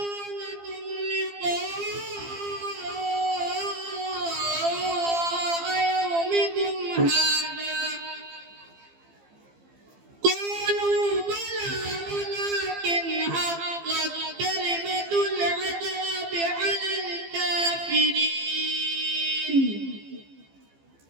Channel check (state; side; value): late; left; 15 ms